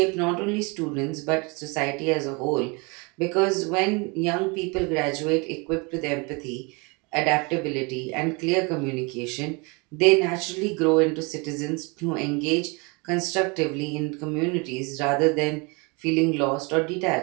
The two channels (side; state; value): left; quieter; 29.4 dB